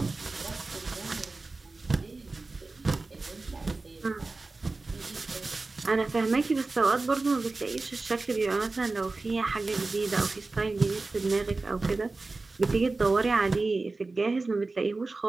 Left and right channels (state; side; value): quieter; left; 3.5 dB